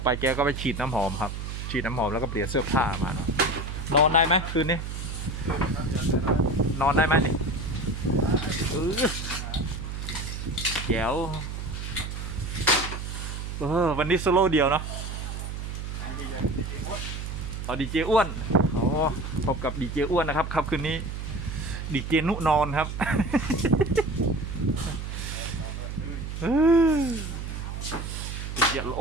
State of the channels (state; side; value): noise; right; hum, 6 dB below the sound